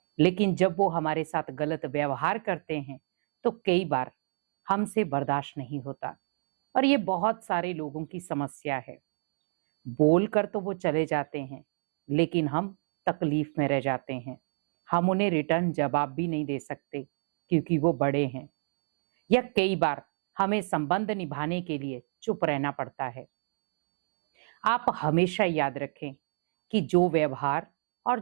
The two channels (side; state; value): left; silent; digital silence